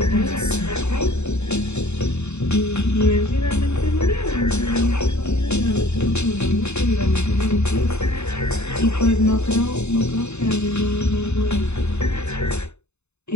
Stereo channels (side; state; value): right; late; 0.81 ms